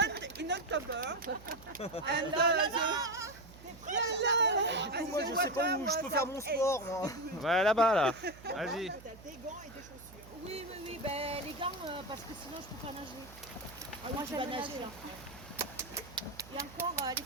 in October. And Moi je sais pas où je peux faire mon sport moi. Ouais, là-bas, là. Vas-y. T'as des gants et des chaussures. Oui, ben, les gants, parce que sinon je peux pas nager. Moi tu vas j'aime nager, nager. hein. Et encore, elle est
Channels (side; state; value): right; noise; hum, 19 dB below the sound